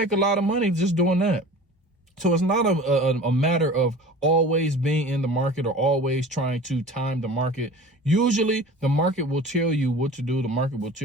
a lot of money just doing that. So it's not a matter of always being in the market or always trying to time the market. Usually the market will tell you what to do. The market will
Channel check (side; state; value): both; normal; correlation 0.40